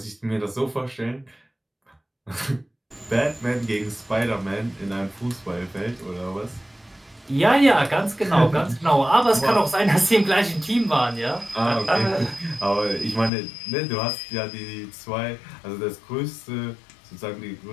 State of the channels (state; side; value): drops out; right; at 13.3 s